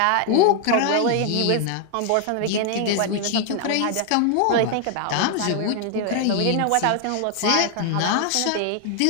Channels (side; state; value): both; different; correlation 0.00